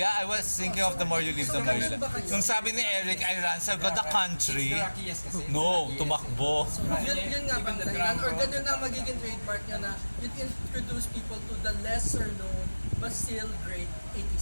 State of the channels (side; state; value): both; inverted; correlation -1.00